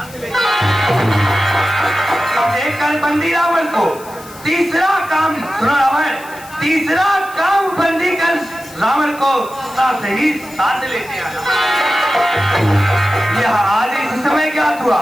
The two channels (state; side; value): noise; left; hiss, 20 dB below the sound